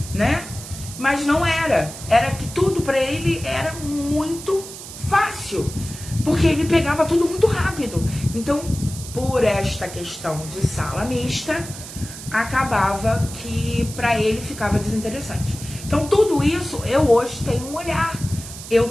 né? Mas não era. Era que tudo para ele era muito fácil, porque ele pegava tudo muito rápido. Então, por esta questão de sala mista, acabava que para ele ficava desinteressante. Então, tudo isso, eu hoje tenho um olhar.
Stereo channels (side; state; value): right; noise; hiss, 13 dB below the sound